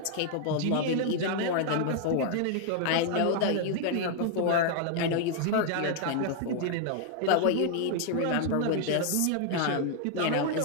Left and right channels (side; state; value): both; different; correlation 0.00